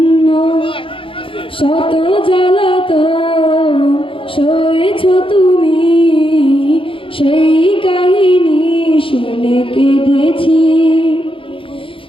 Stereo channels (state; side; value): late; right; 0.26 ms